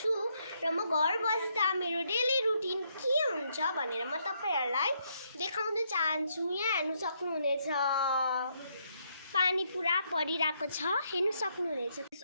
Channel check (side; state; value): both; inverted; correlation -0.75